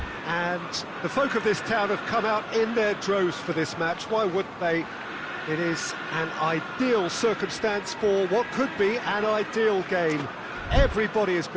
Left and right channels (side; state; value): both; identical; correlation 1.00